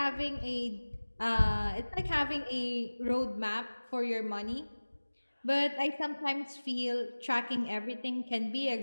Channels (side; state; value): both; inverted; correlation -1.00